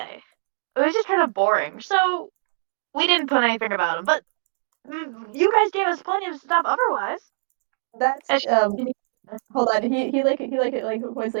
It was just kind of boring, so we didn't put anything about him. But you guys gave us plenty of stuff otherwise. That's hold on. He was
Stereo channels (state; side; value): silent; left; digital silence